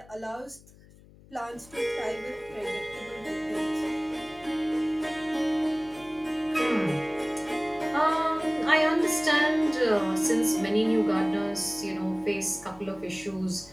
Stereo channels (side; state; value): left; noise; hum, 24 dB below the sound